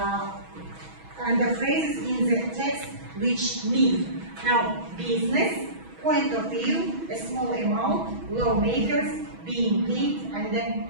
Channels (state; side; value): late; left; 6.2 ms